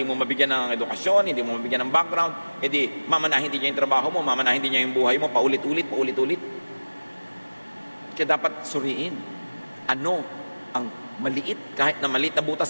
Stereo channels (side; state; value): both; inverted; correlation -1.00